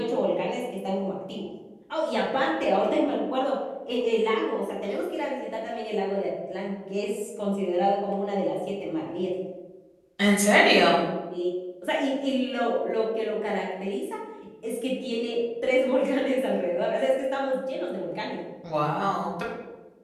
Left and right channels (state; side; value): identical; both; correlation 1.00